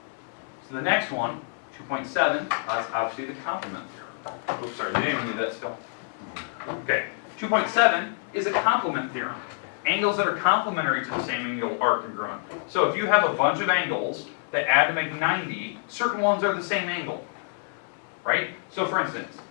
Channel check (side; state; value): right; silent; 60 dB below the other